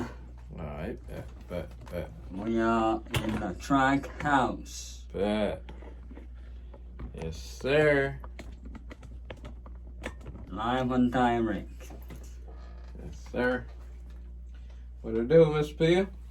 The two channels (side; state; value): both; identical; correlation 1.00